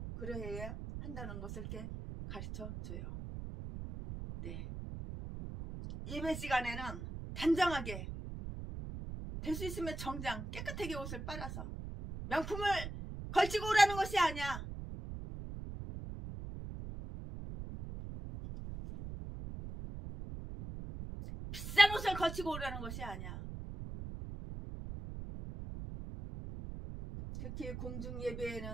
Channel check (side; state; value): right; noise; rumble, 8 dB below the sound